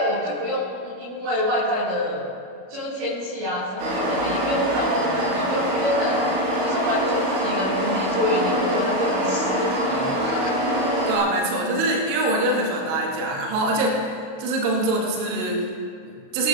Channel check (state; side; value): late; left; 37 ms